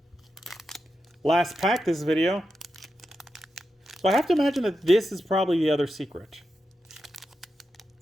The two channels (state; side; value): normal; both; correlation 0.88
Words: Last pack this video. So I have to imagine that this is probably the other secret.